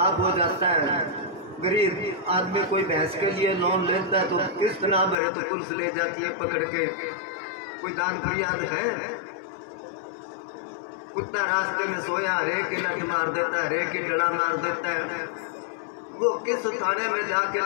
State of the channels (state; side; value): drops out; right; at 5.2 s